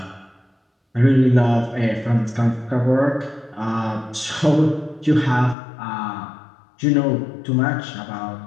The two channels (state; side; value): drops out; right; at 5.6 s